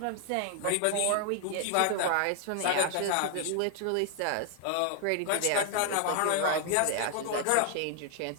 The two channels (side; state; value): both; different; correlation 0.00